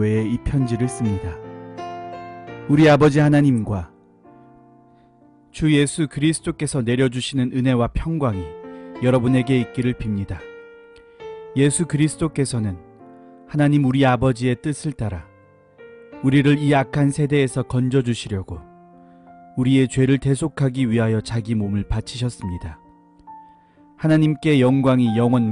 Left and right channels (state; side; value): identical; both; correlation 1.00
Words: 이 편지를 씁니다. 우리 아버지 하나님과 주 예수 그리스도께서 내려주시는 은혜와 평강이 여러분에게 있기를 빕니다. 예수 그리스도께서는 하나님 우리 아버지의 뜻을 따라 우리를 이 악한 세대에서 건져주시려고 우리의 죄를 대속하기 위하여 자기 몸을 바치셨습니다. 하나님께 영광이 영원